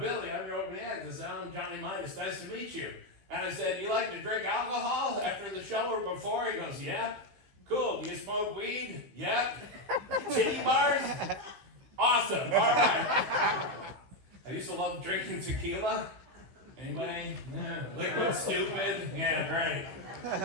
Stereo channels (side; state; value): left; late; 16 ms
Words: I'm your opening act. I said, I'm Johnny Midas, nice to meet you. And I said, you like to drink alcohol after the show or before? He goes, yep. Cool, do you smoke weed? Yep. Titty bars? awesome. All right. I used to love drinking tequila. Anybody? Yeah. Liquid stupid. Yeah, great.